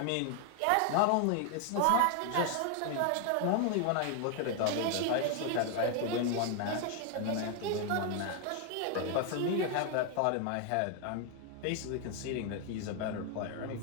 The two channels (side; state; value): both; different; correlation 0.00